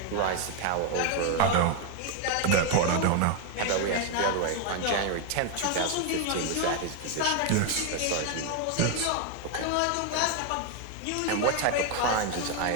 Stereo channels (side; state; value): both; different; correlation 0.01